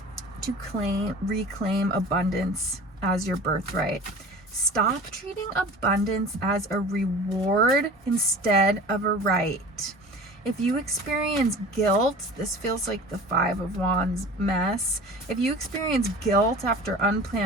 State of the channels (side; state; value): both; normal; correlation 0.40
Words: to reclaim abundance as your birthright. Stop treating abundance as a reward instead of a right. If you experience guilt, this feels like the 5 of Wands mess. If you experience guilt after